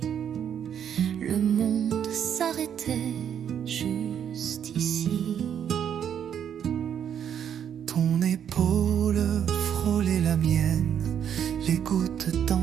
le monde s'arrêtait juste ici. Ton épaule frôlait la mienne, les gouttes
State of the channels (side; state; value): left; quieter; 8.8 dB